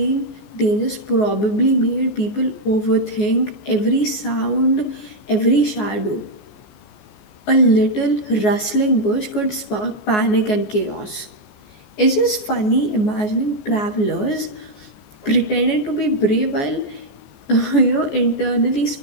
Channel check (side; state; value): right; late; 14 ms